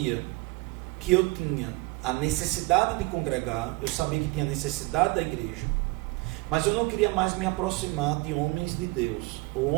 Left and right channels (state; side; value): quieter; left; 23.8 dB